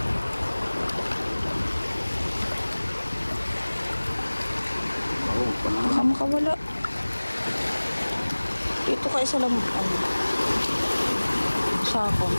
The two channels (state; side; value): inverted; both; correlation -1.00